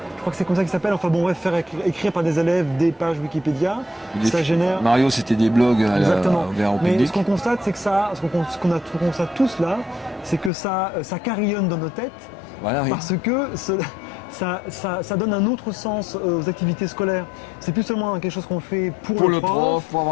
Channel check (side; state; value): right; drops out; at 10.5 s